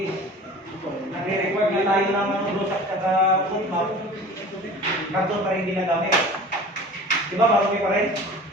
nagre-record nga tayo ng blue stack at foot map. Karton pa rin ginagamit. Diba? Marumi pa rin.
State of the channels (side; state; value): both; normal; correlation 0.41